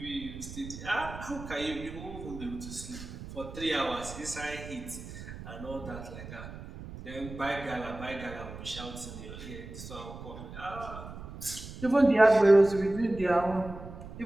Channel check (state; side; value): noise; right; rumble, 12 dB below the sound